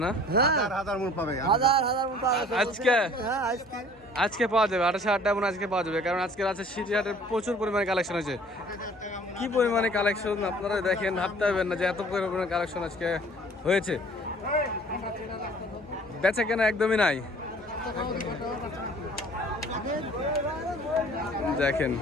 না? হ্যাঁ, হাজার মন পাবে। হাজার হাজার মতো আছে আজকে? হ্যাঁ, আজকে আজকে পাওয়া যাবে 28,000 টাকা মনে, আজকে পাওয়া যাবে, কারণ আজকে আছে সিটি হাটের প্রচুর পরিমাণে কালেকশন হয়েছে। কি পরিমাণে কালেকশন আপনারা দেখেন, ভাবতে পারবেন না যে এত পরিমাণে কালেকশন আজকে হয়েছে। বেচা কেনা একদমই নাই। দেখেন,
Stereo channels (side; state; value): both; normal; correlation 0.51